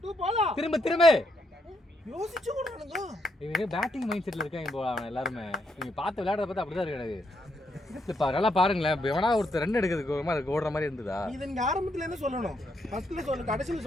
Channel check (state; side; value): normal; both; correlation 0.77